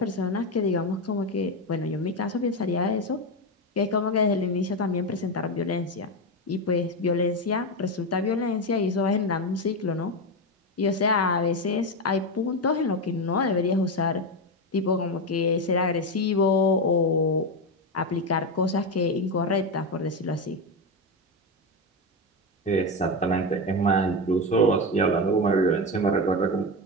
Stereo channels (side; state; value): both; normal; correlation 0.13